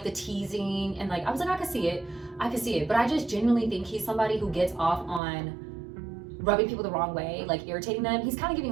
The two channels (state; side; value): drops out; left; at 5.2 s